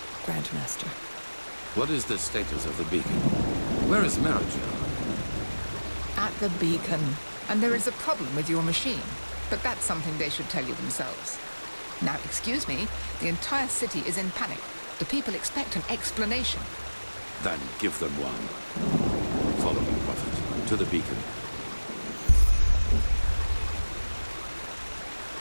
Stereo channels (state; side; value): inverted; both; correlation -1.00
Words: Grandmaster. What is the status of the beacon? Where is Marajel? At the beacon. And there is a problem with your machine. But that's something they should tell you themselves. Now, excuse me, the entire city is in panic. The people expect an explanation. Then give them one. Follow me, Prophet, to the beacon.